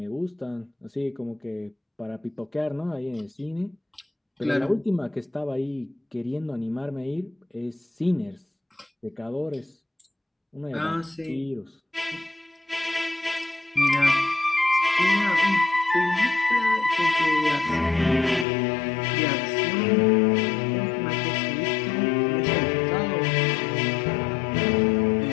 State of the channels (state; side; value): drops out; right; at 18.4 s